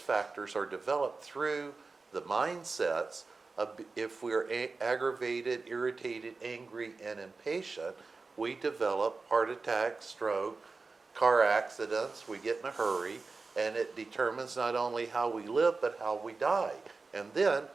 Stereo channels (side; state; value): left; quieter; 4.0 dB